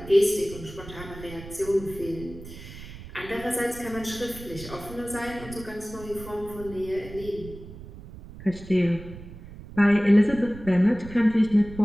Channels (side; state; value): right; noise; rumble, 14 dB below the sound